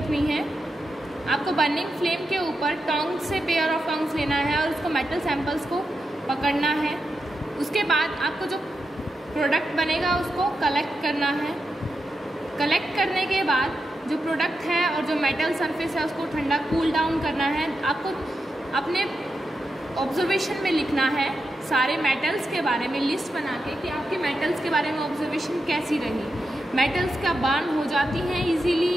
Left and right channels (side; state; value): both; normal; correlation 0.88